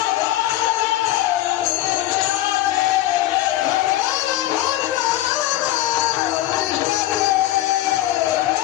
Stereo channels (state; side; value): quieter; right; 14.5 dB